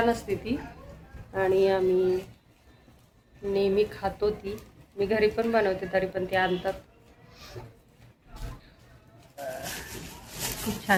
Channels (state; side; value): identical; both; correlation 1.00